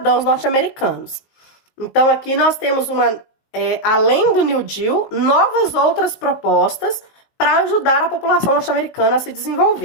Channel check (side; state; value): right; late; 19 ms